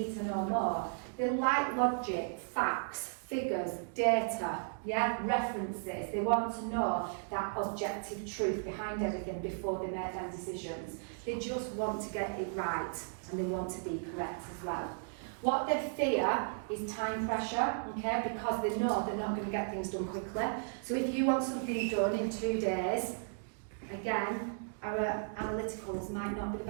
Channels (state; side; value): silent; left; digital silence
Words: to know more. They like logic, facts, figures, data, yeah, references. They want to know that objective truth behind everything before they make their decisions. They just want to get it right, and they want to be correct as well. What they fear is time pressure, okay, because they know they're not going to get things done quickly. So if you want something done in 2 days, again, our analyticals might not be the